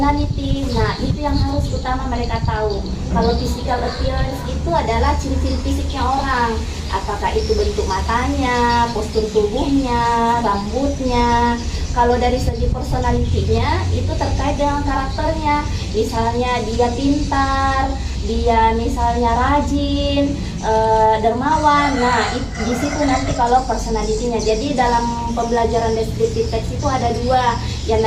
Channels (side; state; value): both; identical; correlation 1.00